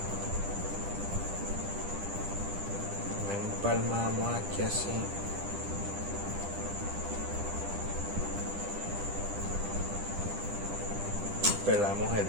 Empalmamos aquí así. Pelamos el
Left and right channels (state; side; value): late; left; 10 ms